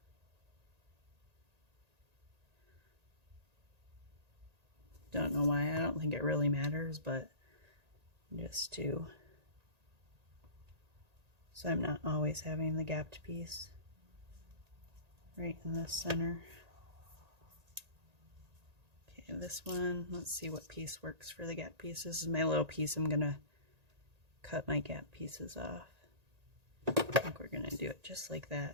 Don't know why. I don't think it really matters, but just to, so I'm not always having the gapped piece right in the center. Okay, this one, let's see what piece works for the gap piece. This is my little piece. I'm gonna cut my gap pieces off. I think we're gonna do it just like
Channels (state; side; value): late; left; 1.8 ms